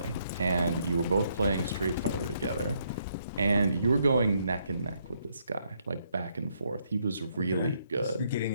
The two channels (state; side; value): inverted; both; correlation -0.73